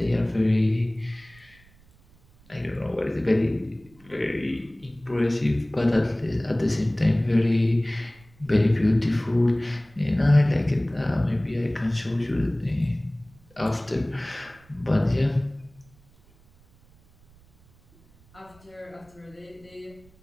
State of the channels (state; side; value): noise; right; rumble, 28 dB below the sound